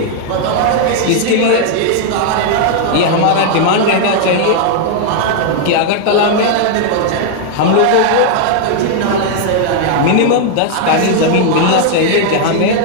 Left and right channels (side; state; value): both; different; correlation 0.00